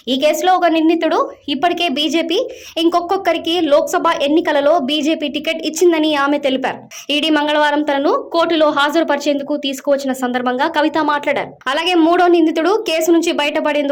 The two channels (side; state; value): both; identical; correlation 1.00